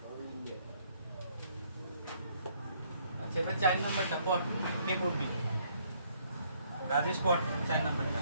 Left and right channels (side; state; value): both; inverted; correlation -0.67